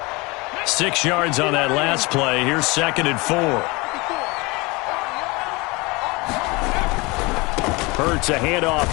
Six yards on that last play. Here's 2nd and 4. Hurts a handoff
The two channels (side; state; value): right; quieter; 25.1 dB